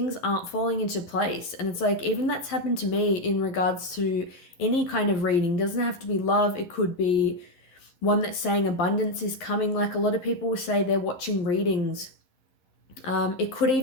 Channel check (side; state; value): right; late; 11 ms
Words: aren't falling into place. And it's like, even that's happened to me in regards to any kind of reading. It doesn't have to be love, it could be one that's saying abundance is coming. Like a lot of people will say they're watching readings. It could